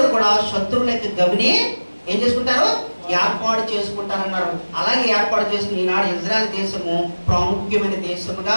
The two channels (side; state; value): both; inverted; correlation -1.00